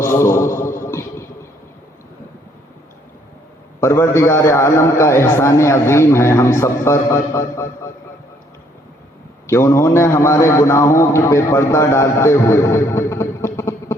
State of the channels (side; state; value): both; normal; correlation 0.66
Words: پروردگار عالم کا احسان عظیم ہے ہم سب پر کہ انہوں نے ہمارے گناہوں پہ پردہ ڈالتے ہوئے